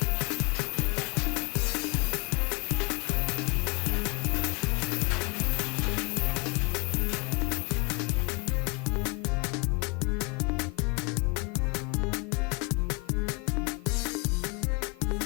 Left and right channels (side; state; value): right; quieter; 29.0 dB